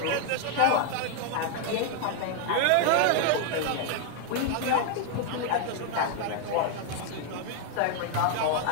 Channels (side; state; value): both; different; correlation 0.01